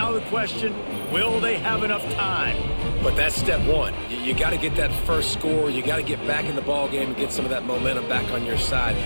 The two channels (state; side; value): inverted; both; correlation -1.00